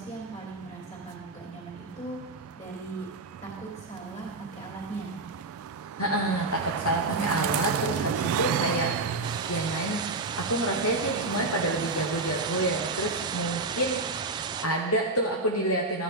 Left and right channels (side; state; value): left; quieter; 3.1 dB